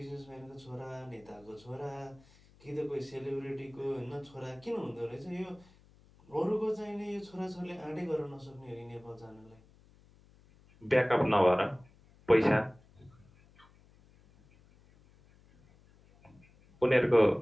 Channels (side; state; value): left; noise; hum, 27 dB below the sound